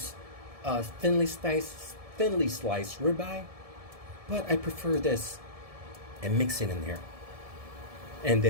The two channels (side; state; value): left; late; 1.7 ms